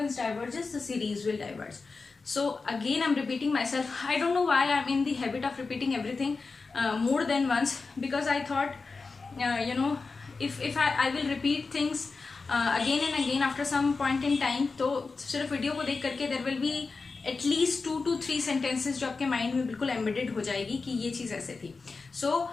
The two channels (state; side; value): quieter; right; 4.2 dB